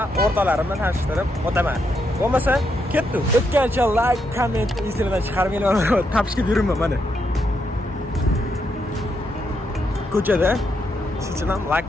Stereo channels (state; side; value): normal; both; correlation 0.80